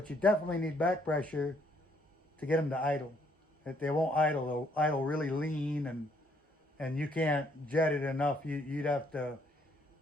you definitely need back pressure to get them to idle. If they won't idle, they'll idle really lean and you can't jet it enough. You'd have to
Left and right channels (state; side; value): normal; both; correlation 0.68